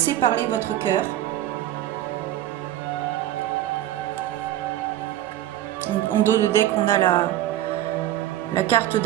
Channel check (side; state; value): left; quieter; 13.2 dB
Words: parler votre cœur. En dos de deck, on a la carte